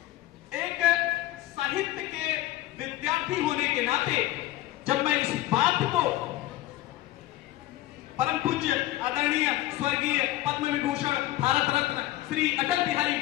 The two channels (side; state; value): right; quieter; 15.7 dB